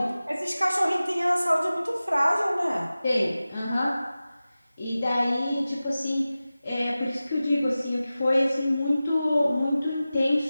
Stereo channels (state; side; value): inverted; both; correlation -0.96